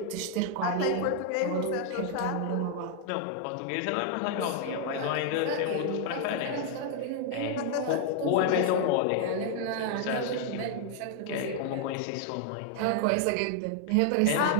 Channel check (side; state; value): both; different; correlation 0.00